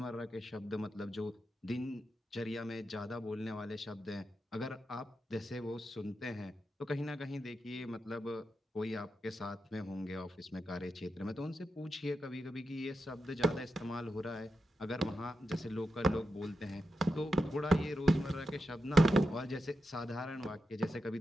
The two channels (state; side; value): normal; both; correlation 0.88